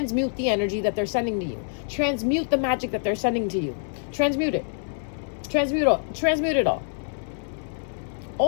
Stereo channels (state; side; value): silent; right; 60 dB below the other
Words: the energy that they're sending to you. Transmute the magic that they're sending to you. Transmute it. Transmute it all.